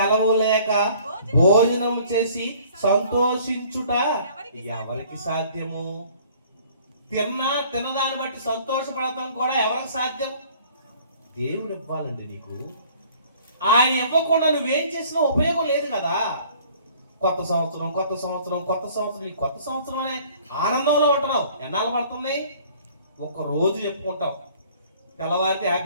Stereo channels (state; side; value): inverted; both; correlation -0.54